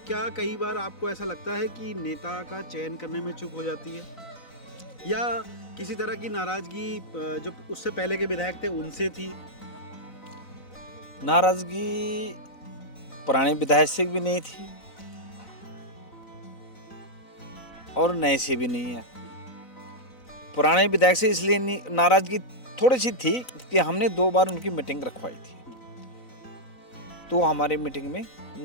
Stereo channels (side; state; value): right; late; 4.0 ms